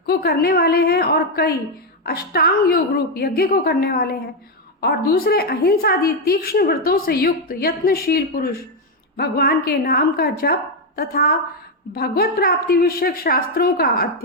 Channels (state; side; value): normal; both; correlation 0.04